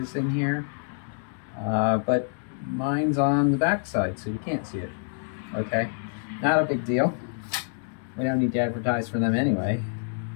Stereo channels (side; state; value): right; silent; digital silence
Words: in here, but mine's on the back side, so you can't see it. Okay, not a big deal. We don't need to advertise for them anyway.